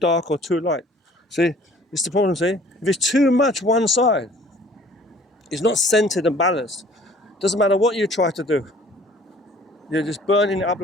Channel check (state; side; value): normal; both; correlation 0.53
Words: or too light, see, it's the problem, see? If it's too much one side, it's not centered and balanced. Doesn't matter what you try to do. You're just burning it up